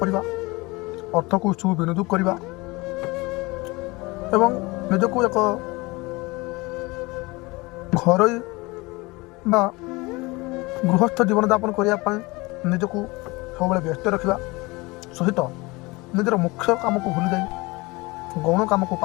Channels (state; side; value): quieter; right; 23.7 dB